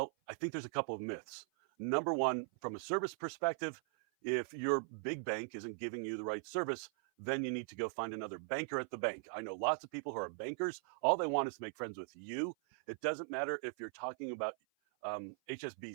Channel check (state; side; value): silent; left; 51 dB below the other